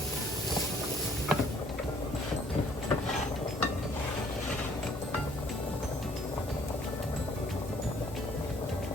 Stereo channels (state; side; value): normal; both; correlation 0.61